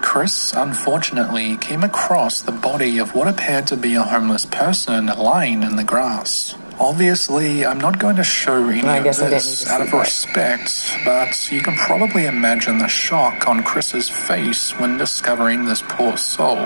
Chris, unfortunately, came across the body of what appeared to be a homeless person lying in the grass. Obviously, I'm not going to show any of this out of respect, but you can probably imagine the shock on Chris's face when discovering this poor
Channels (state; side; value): inverted; both; correlation -1.00